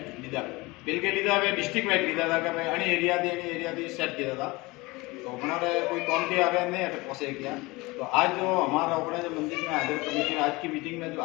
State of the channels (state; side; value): quieter; right; 23.0 dB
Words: लीधा बिल के लीधा वे डिस्ट्रिक्ट वाइज लीधा था कि भाई अणी एरिया थी सेट किया था। तो हमारे कोई कौन के आगे नहीं है पहुँचे किया। तो आज जो हमारा अपने जो मंदिर में हाजिर कमेटी आज की मीटिंग में जो